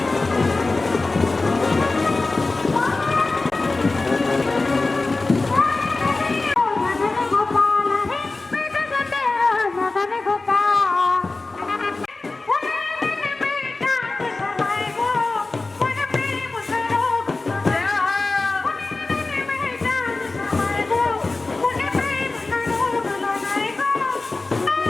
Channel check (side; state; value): right; quieter; 3.4 dB